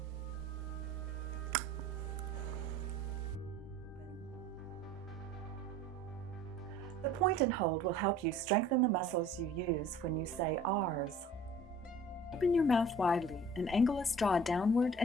The point and hold will help you strengthen the muscles you use when you say R's. Open your mouth widely and angle a straw downward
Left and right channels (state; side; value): normal; both; correlation 0.49